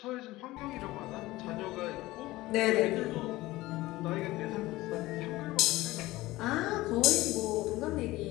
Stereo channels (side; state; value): right; quieter; 18.5 dB